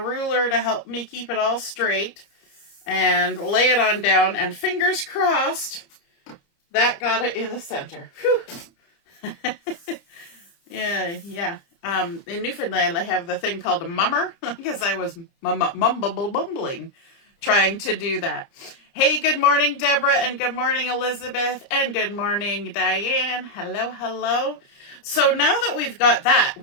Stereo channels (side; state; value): right; late; 30 ms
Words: to help me keep it all straight and lay it on down, and fingers crossed that got it in the center. Whew. Yeah. In Newfoundland, I have the thing called a mummer because I was mumbling trying to do that. Hey, good morning, Deborah, and good morning, Elizabeth, and good morning, Diane. Hello, hello. So now that we've got that,